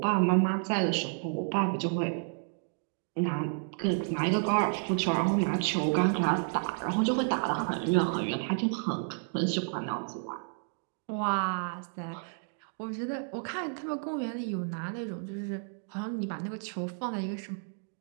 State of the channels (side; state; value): left; silent; 57 dB below the other